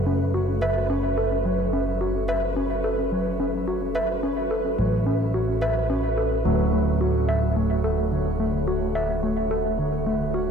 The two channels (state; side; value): normal; both; correlation 0.60